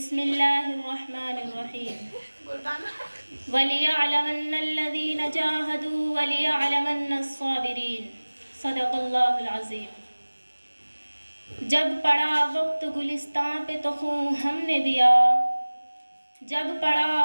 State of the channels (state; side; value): inverted; both; correlation -1.00